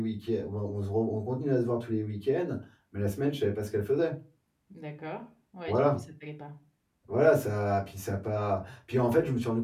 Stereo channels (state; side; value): identical; both; correlation 1.00